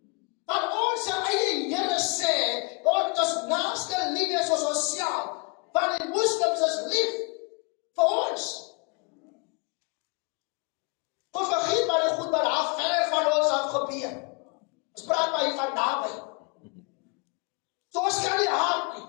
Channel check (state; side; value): quieter; right; 31.6 dB